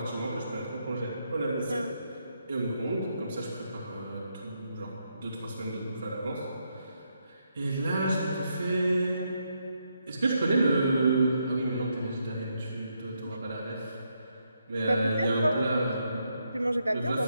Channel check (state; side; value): inverted; both; correlation -0.79